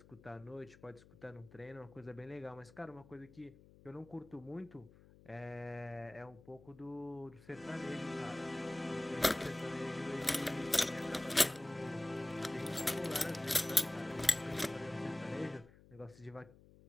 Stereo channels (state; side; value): noise; left; hum, 23 dB below the sound